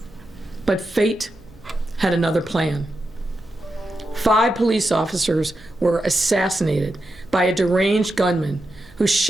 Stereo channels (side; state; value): right; noise; hum, 26 dB below the sound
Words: But fate had another plan. 5 police officers were assassinated by a deranged gunman who